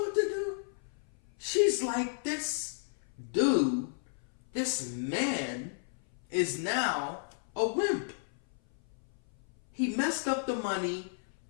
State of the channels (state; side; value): silent; right; 56 dB below the other